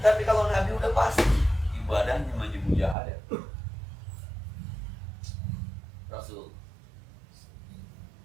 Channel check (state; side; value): drops out; left; at 3.0 s